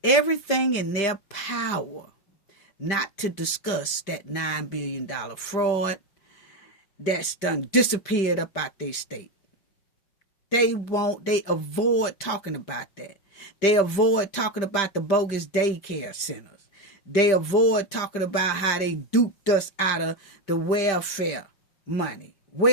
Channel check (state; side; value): late; right; 5.1 ms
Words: everything in their power not to discuss that $9 billion fraud that's done disappeared up out their state? They avoid talking about that. They avoid talking about the bogus daycare centers. They avoid talking about how they duped us out of the welfare money,